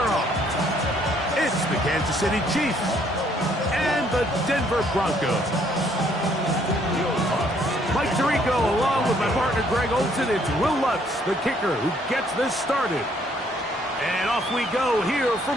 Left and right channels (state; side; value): normal; both; correlation 0.66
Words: off. It's the Kansas City Chiefs and the Denver Broncos. Mike Tirico along with my partner Greg Olson. It's Will Lutz, the kicker, who gets this started. And off we go here